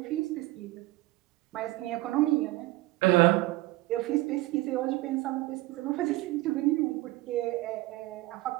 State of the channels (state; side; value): quieter; left; 18.8 dB